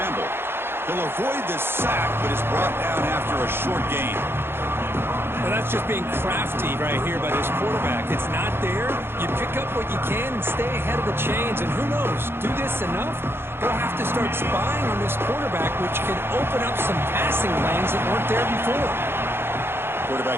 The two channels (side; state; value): left; late; 0.11 ms